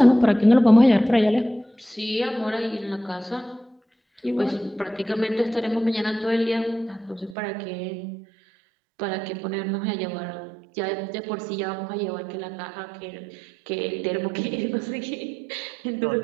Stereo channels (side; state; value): left; drops out; at 7.4 s